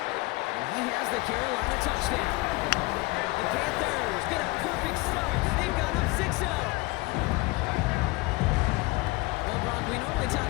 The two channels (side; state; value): right; quieter; 23.4 dB